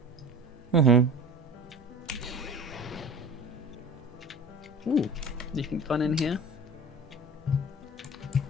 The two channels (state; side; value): normal; both; correlation 0.38